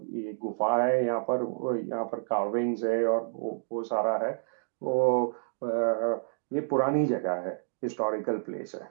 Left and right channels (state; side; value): silent; left; digital silence